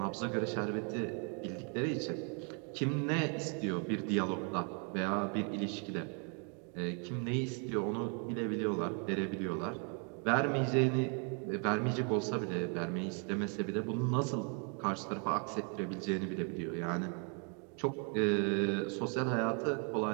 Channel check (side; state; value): left; quieter; 38.7 dB